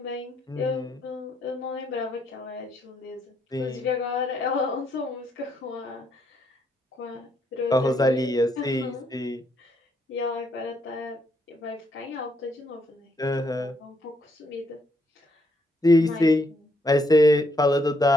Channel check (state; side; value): normal; both; correlation 0.73